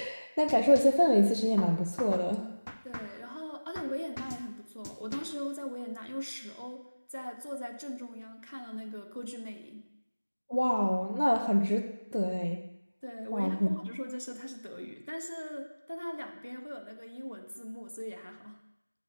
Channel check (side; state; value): both; inverted; correlation -1.00